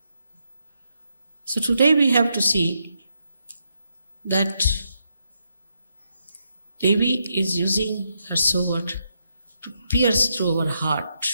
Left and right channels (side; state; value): both; inverted; correlation -0.80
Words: So today we have to see that Devi is using her sword to pierce through our heart